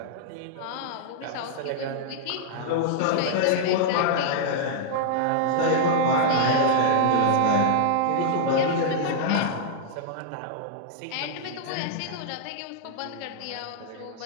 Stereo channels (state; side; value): different; both; correlation -0.01